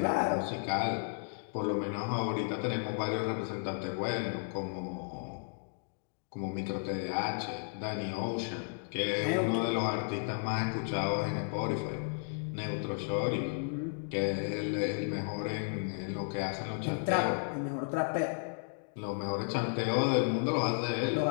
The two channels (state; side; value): silent; right; digital silence